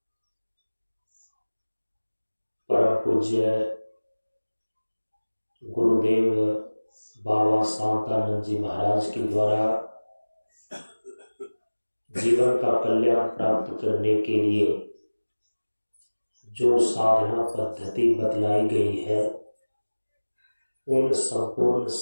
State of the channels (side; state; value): both; inverted; correlation -1.00